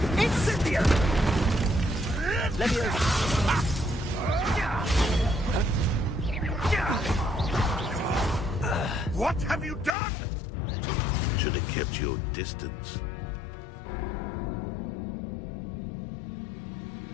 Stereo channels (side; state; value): right; drops out; at 10.0 s